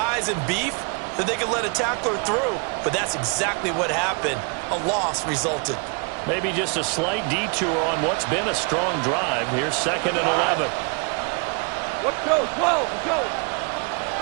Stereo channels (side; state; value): left; quieter; 35.5 dB